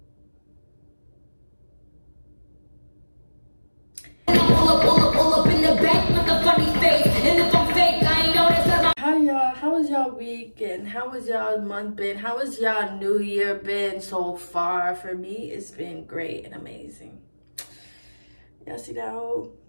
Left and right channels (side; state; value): both; inverted; correlation -1.00